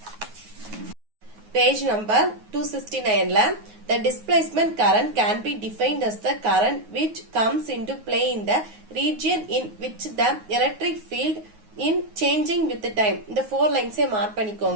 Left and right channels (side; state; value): left; late; 9.4 ms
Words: Page number 269 ல the displacement current can be defined as the current which comes into play in the region in which the electric field in changing with the time. இந்த 4 lines mark